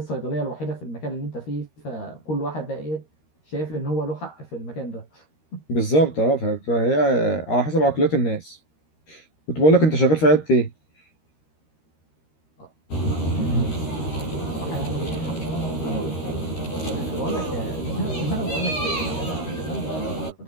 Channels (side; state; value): right; late; 13 ms